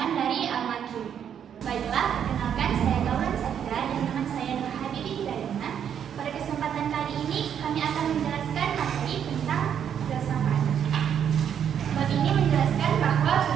dari Al-Makki. Baiklah, perkenalkan saya Gaulan Sakira dan teman saya Nur Habibi Hidayana. Pada kesempatan kali ini kami akan menjelaskan materi tentang filsafat. Bab ini menjelaskan bahwa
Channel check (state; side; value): quieter; left; 8.7 dB